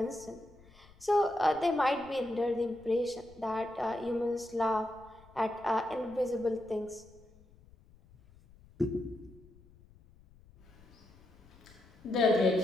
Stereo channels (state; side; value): noise; left; rumble, 25 dB below the sound